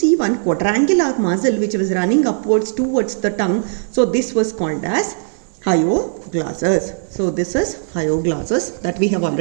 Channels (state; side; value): silent; left; digital silence